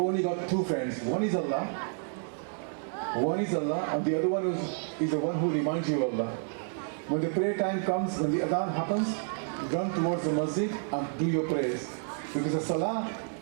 got two friends. One is Allah, and the other one is the one who reminds you of Allah. When the prayer time comes, when the adhan happens, run towards the masjid and do your prayers. Because the salah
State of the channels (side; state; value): left; silent; 58 dB below the other